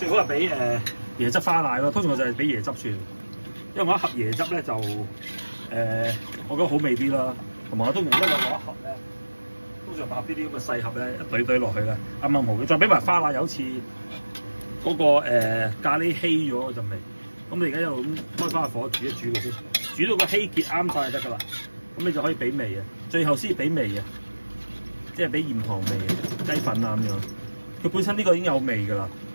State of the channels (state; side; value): inverted; both; correlation -1.00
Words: 好係俾椰汁花奶咯。通常我就係俾椰汁算，因為我一盒椰汁咧就我覺得好味啲啦。同埋我通常一路攞一盒咧，通常買呢啲咁嘅細盒咧，一堆堆落去咧，啱啱好嘅。再俾埋花奶，有次嗰個咖喱稀咗嗰陣味。咁你而家一路咁開翻個火煮一煮佢先，煮到個稀結啱晒就得㗎啦。咁你就可以俾味啊，最後先俾味啊，即係俾鹽糖味、雞粉啊咁樣。佢本身呢個已經有味㗎啦。